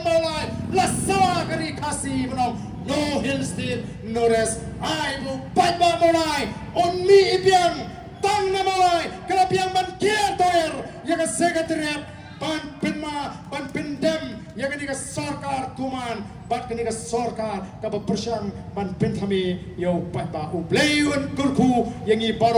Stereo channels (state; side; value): identical; both; correlation 1.00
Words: maulai la sawa kari kasi benong no hill state no rest. Ai bu upai pa maulai on mi ibiang tang na maulai kala biang ban kier toer ya ka secretariat ban pinma ban pindem ya ka ni ka sarkar tuman bat kini ka sarkar ka bersang ban pentami yo pat ba u playun kurku yang i